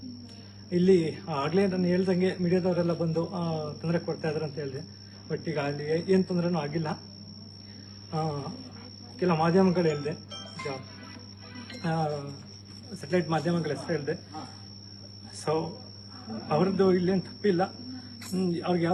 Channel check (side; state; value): both; identical; correlation 1.00